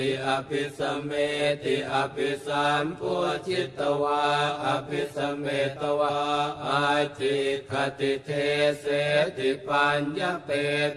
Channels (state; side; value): identical; both; correlation 1.00